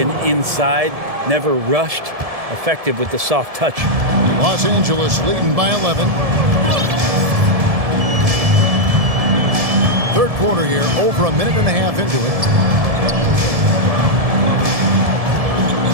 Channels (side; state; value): left; late; 1.7 ms